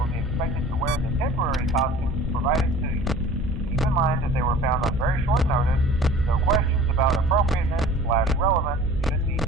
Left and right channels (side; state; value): both; normal; correlation 0.45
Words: be expected to wear the temporary costumes provided to you. Keep in mind that they were found on very short notice, so questions about appropriateness/relevance should be